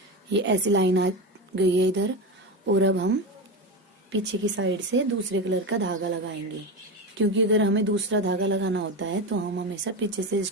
ये ऐसी लाइन आ गई है इधर, और अब हम पीछे की साइड से दूसरे कलर का धागा लगाएंगे, क्योंकि अगर हमें दूसरा धागा लगाना होता है तो हम हमेशा पीछे से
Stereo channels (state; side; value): normal; both; correlation 0.19